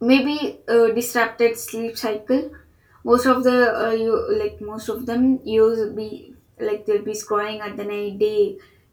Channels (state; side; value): identical; both; correlation 1.00